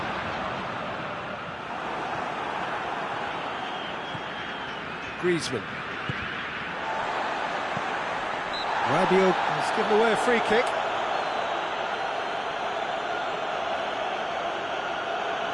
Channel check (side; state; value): both; identical; correlation 1.00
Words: Griezmann. Rabiot has given away a free kick.